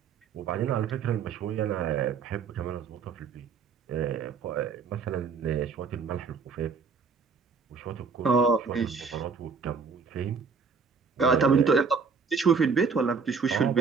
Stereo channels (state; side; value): quieter; left; 5.4 dB